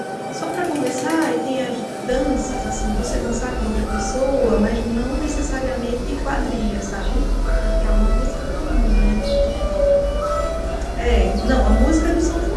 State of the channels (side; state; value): both; identical; correlation 1.00